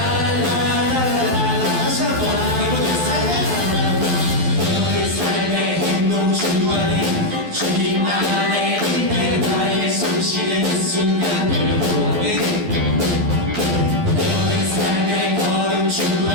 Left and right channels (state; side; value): late; left; 12 ms